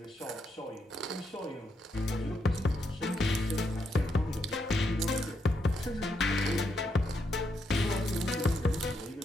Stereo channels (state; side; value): normal; both; correlation 0.80